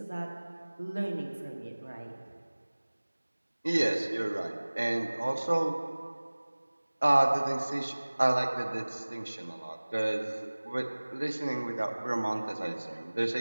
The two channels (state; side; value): inverted; both; correlation -1.00